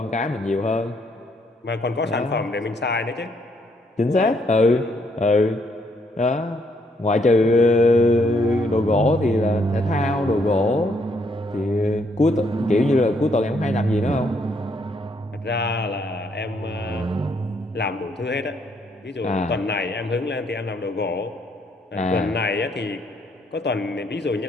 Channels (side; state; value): both; normal; correlation 0.71